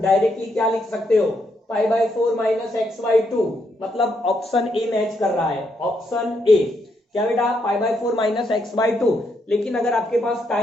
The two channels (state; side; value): normal; both; correlation 0.78